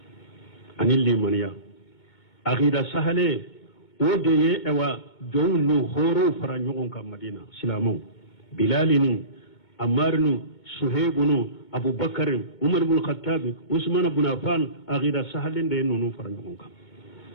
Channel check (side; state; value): right; late; 2.2 ms